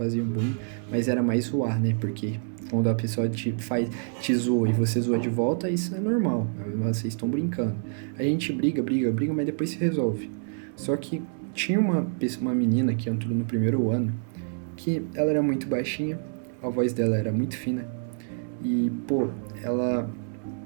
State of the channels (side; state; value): left; silent; 60 dB below the other